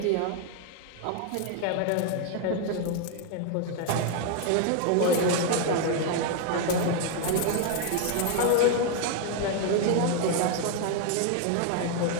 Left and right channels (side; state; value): both; different; correlation 0.00